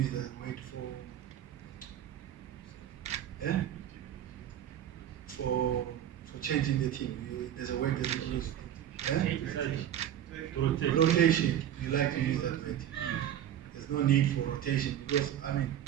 that word for changing the team. There's a word that you use. Rotation. You like to use that word. There's no need for rotation because I mean,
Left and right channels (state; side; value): quieter; left; 10.7 dB